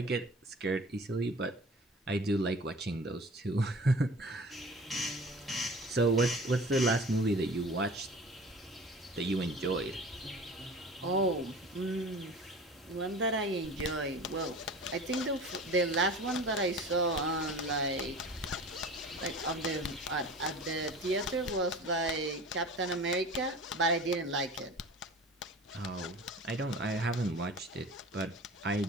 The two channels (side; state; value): both; normal; correlation 0.40